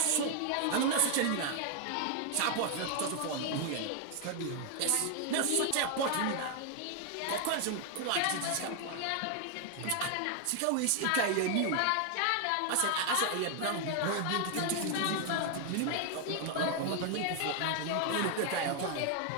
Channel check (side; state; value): both; different; correlation 0.00